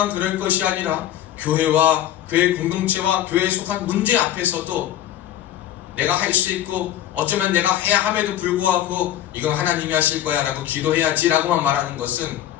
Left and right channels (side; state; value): right; quieter; 12.1 dB